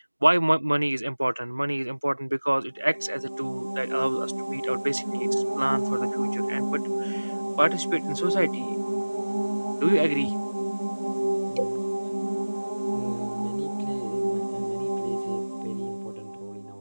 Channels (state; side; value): inverted; both; correlation -1.00